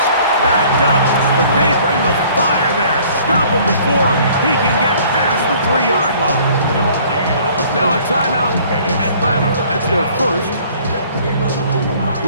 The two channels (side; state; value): both; inverted; correlation -0.55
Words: backed up, but they bring the fire there. Stop them before he can get past the 3-yard line. Now a timeout. Atlanta, that's their first.